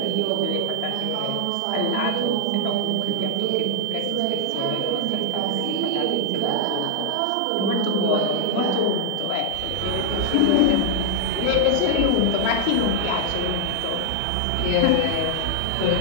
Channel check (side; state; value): both; different; correlation 0.00